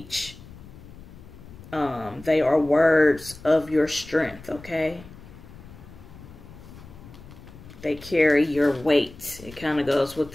they are words of your strength, okay? They carry your weight. It kind of goes with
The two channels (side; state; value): left; noise; rumble, 18 dB below the sound